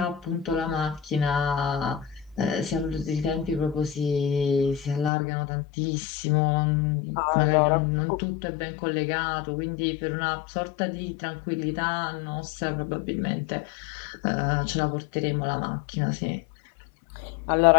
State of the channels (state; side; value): drops out; right; at 5.1 s